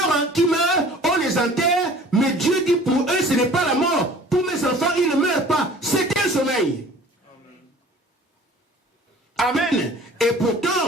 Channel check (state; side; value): normal; both; correlation 0.48